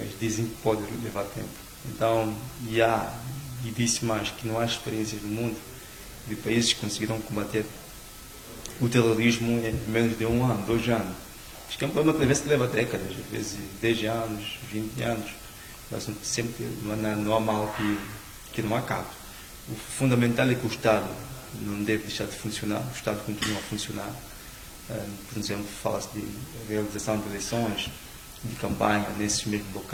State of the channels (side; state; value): both; identical; correlation 1.00